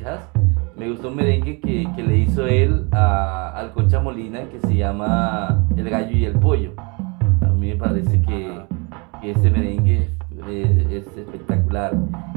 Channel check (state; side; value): quieter; left; 30.9 dB